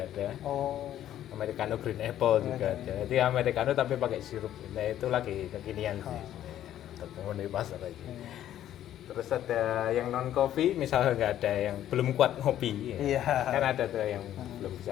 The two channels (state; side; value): quieter; right; 11.8 dB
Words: ada, americano green apple juga ada. Jadi americano tapi pakai sirup, nah itu lagi kekinian sih untuk memenuhi pasar aja. Terus ada yang non kopi, misalnya nggak ada yang belum kuat ngopi, kan ada tuh yang belum